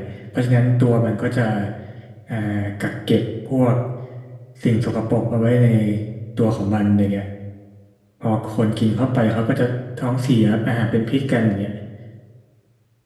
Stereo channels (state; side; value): identical; both; correlation 1.00